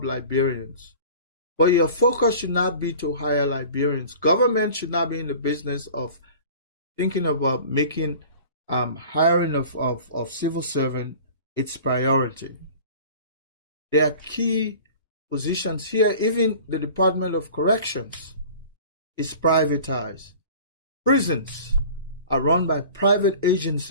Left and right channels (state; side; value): inverted; both; correlation -0.43